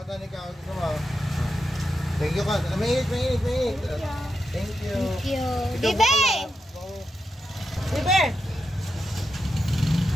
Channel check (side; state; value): both; normal; correlation 0.87